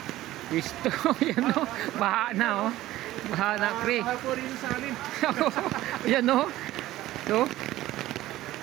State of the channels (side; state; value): left; quieter; 15.5 dB